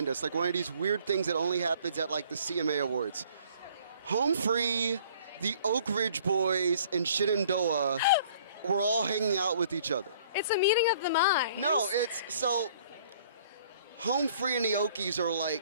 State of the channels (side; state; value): both; inverted; correlation -0.56